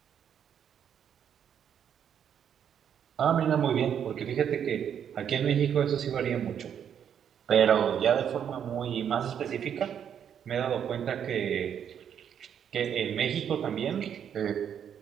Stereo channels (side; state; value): left; quieter; 8.6 dB